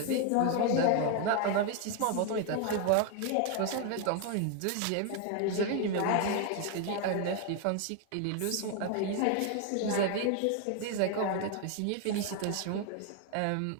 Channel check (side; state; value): both; different; correlation 0.01